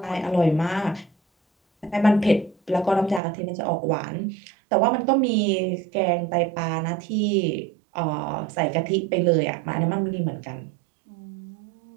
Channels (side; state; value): left; drops out; at 3.2 s